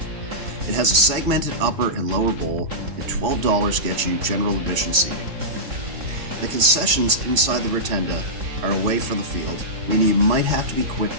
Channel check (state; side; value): late; left; 4.0 ms